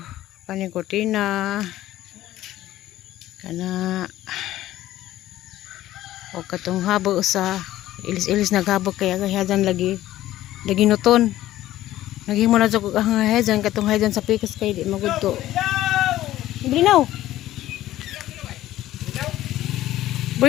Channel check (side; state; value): right; quieter; 14.4 dB